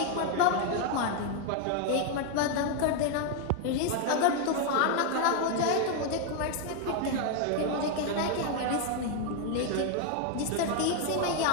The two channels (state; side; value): different; both; correlation 0.01